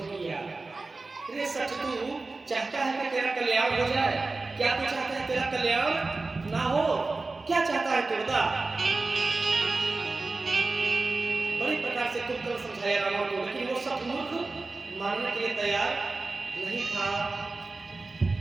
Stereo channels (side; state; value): left; quieter; 3.5 dB